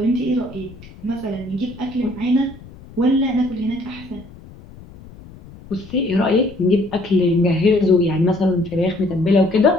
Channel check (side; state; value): left; noise; rumble, 19 dB below the sound